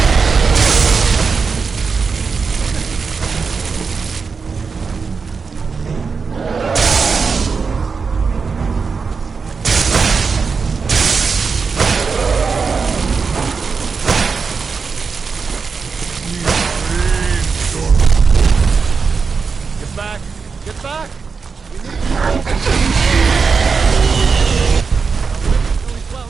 Get back! We need really well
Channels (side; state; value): left; quieter; 5.2 dB